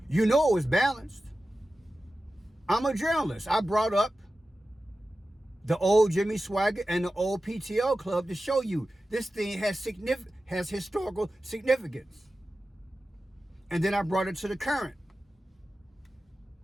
You know it was balanced. I'm a journalist. I brought up the old Jimmy Swaggart and the old PTO Club to show you this thing has historical significance. And then I brought it to the current.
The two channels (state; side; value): normal; both; correlation 0.94